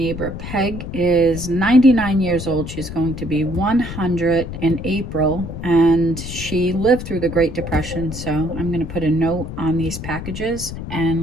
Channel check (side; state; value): left; noise; rumble, 8 dB below the sound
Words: Peg is 99 years old. She's going to be 100 in April, and she lived through the Great Depression. So I'm going to put a note on these packages